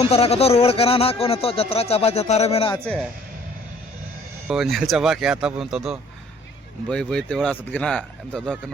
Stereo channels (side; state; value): both; normal; correlation 0.56